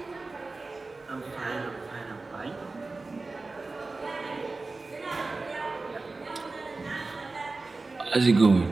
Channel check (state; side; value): quieter; left; 3.6 dB